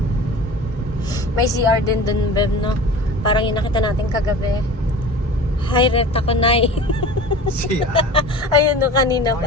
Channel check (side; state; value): both; normal; correlation 0.37